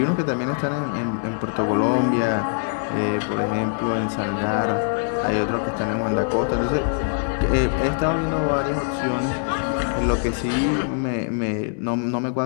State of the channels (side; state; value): right; silent; 63 dB below the other